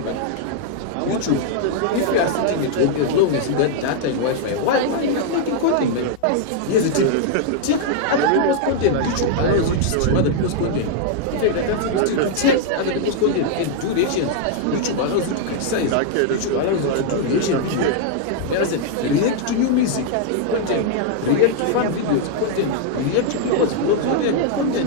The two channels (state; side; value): different; both; correlation 0.00